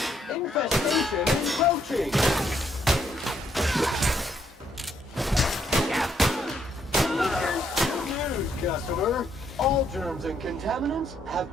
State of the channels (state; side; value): normal; both; correlation 0.72